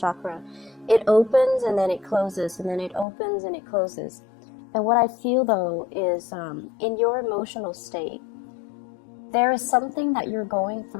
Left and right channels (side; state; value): right; drops out; at 3.1 s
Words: It opens and then it closes, and then it opens and it closes. And what I feel though is in your emotional state, there is something that you're going